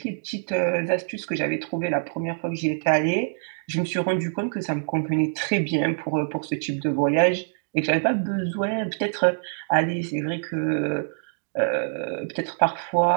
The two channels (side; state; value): left; silent; digital silence